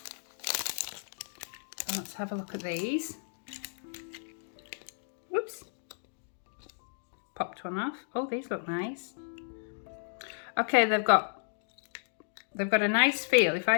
So let's have a look at these. Whoops. Popped one off. Oh, these look nice. Okay, they've got a nice feel. If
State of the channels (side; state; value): right; silent; digital silence